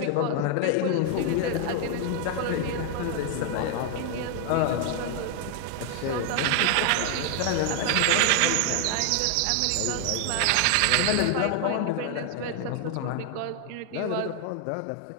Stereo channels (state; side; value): different; both; correlation 0.00